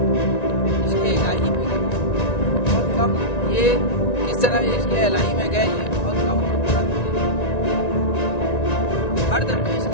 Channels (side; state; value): right; late; 1.9 ms